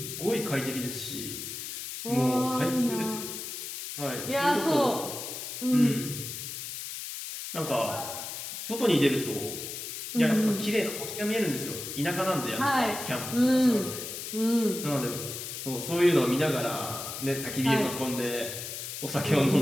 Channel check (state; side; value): noise; left; hiss, 7 dB below the sound